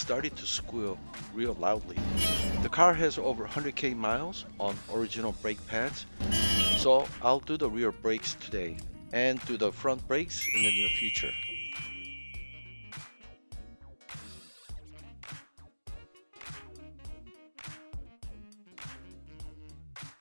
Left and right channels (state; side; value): inverted; both; correlation -1.00